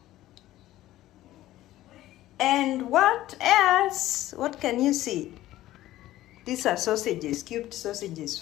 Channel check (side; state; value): right; quieter; 15.0 dB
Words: and what else? What can you see? These are sausages, cubed sausages,